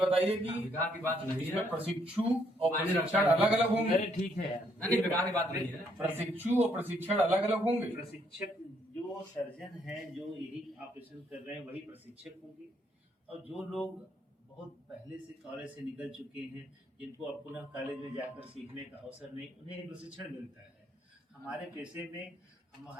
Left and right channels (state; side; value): normal; both; correlation 0.71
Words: कि विकास की बात नहीं है, इसमें प्रशिक्षु और प्रशिक्षण अलग अलग होंगे। ठीक है, नहीं, विकास की बात नहीं है। प्रशिक्षु और प्रशिक्षण अलग अलग होंगे। प्रशिक्षक जो सर्जन हैं, जो यही ऑपरेशन कर रहे हैं, वही प्रशिक्षक होंगे, और जो लोग बहुत पहले से कॉलेज से निकल चुके हैं, जिनको अब पुनः कॉलेज में जाकर सीखने का अवसर नहीं, उन्हें प्रशिक्षण मिलता है। हमारे पेशे में हम